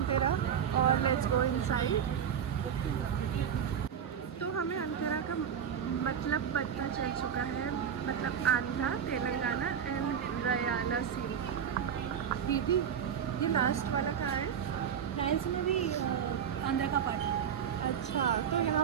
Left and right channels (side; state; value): left; quieter; 8.2 dB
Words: और लेट्स गो इनसाइड। तो हमें अंधेरा का मतलब पता चल चुका है, मतलब आंध्रा, तेलंगाना एंड रयाला सी। दीदी ये लास्ट वाला कहाँ है? फ्रांस में भी आंध्र का पार्ट है। अच्छा, तो